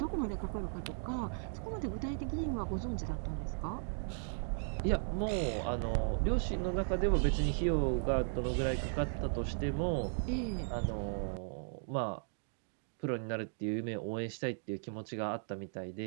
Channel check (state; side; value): silent; left; digital silence